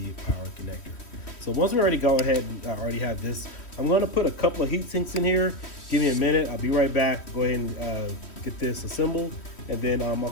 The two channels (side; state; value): right; late; 3.1 ms